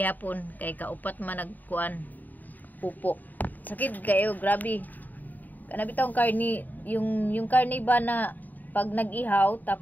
kay kaupat man nagkuan pupo. Sakit kayo, grabe. Kana bitong karni, yung karni ba na pag nag-ihaw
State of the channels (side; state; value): right; late; 0.085 ms